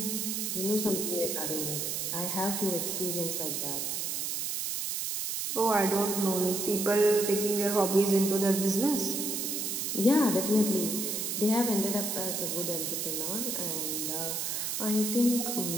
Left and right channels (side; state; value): right; noise; hiss, 1 dB below the sound